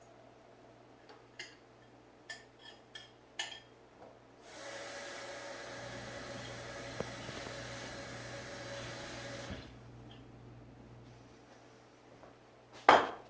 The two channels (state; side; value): identical; both; correlation 1.00